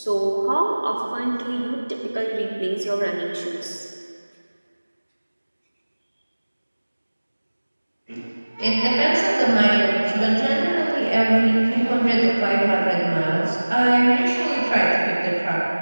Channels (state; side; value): inverted; both; correlation -1.00